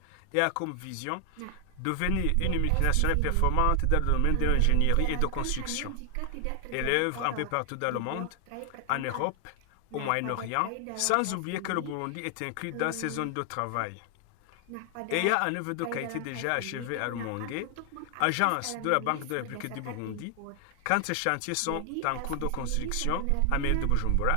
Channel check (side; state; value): both; different; correlation 0.00